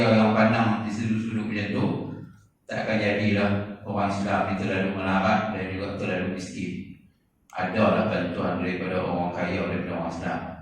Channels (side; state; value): both; identical; correlation 1.00